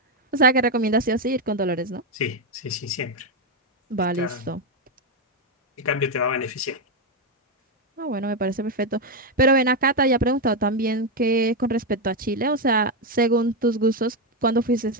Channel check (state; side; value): normal; both; correlation 0.05